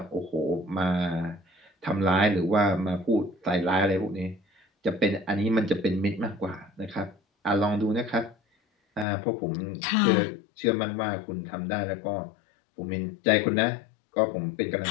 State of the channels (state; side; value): drops out; right; at 9.1 s